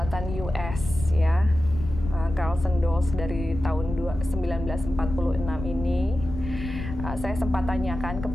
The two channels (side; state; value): left; noise; rumble, 8 dB below the sound